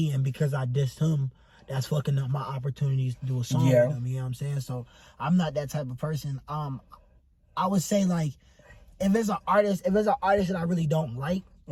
and because I dissed him, that's fucking up my opportunities to do a song with him. You know what I'm saying? So I'm not that type of person. I would say, like, if it's an artist that I really don't like,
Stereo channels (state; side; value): identical; both; correlation 1.00